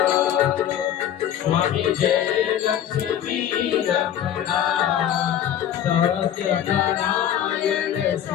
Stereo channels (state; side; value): quieter; right; 10.4 dB